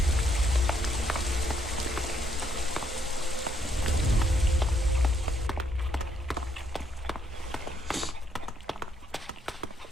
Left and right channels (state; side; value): normal; both; correlation 0.73